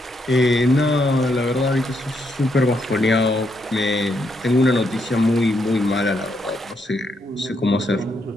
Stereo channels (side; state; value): both; normal; correlation 0.78